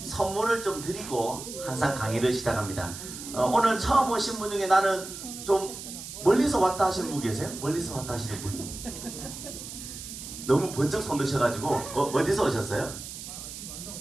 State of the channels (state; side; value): noise; right; hiss, 10 dB below the sound